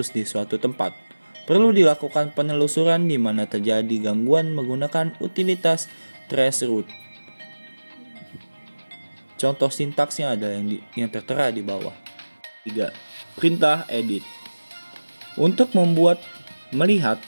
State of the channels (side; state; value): both; inverted; correlation -1.00